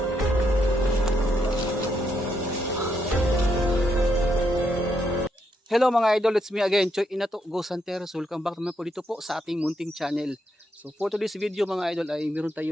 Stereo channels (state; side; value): normal; both; correlation 0.78